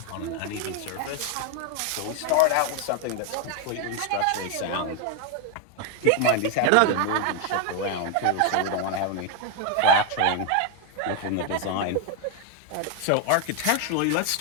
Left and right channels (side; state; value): both; different; correlation 0.01